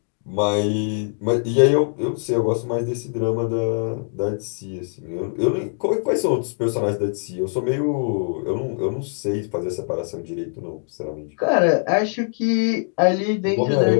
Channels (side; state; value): right; silent; 60 dB below the other